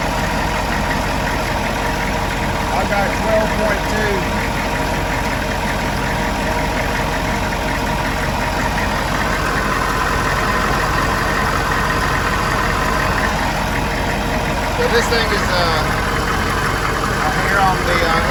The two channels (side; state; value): both; identical; correlation 1.00